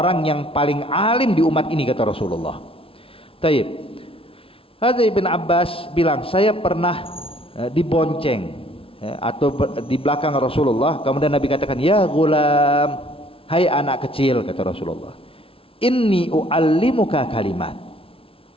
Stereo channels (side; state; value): right; late; 0.26 ms